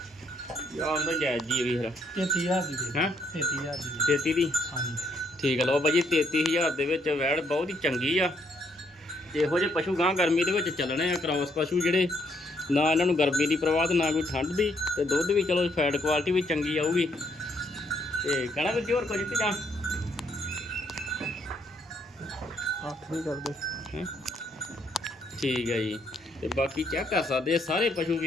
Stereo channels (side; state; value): both; normal; correlation 0.71